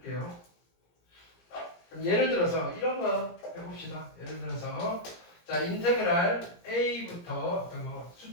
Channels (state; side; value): late; right; 17 ms